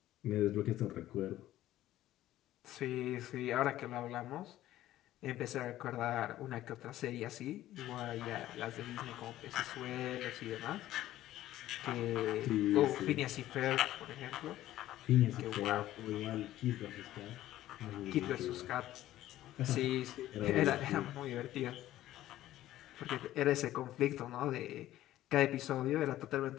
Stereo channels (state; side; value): quieter; right; 14.2 dB